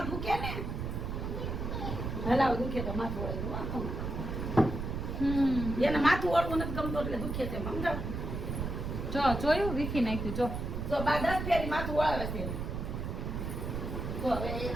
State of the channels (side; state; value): right; noise; rumble, 4 dB below the sound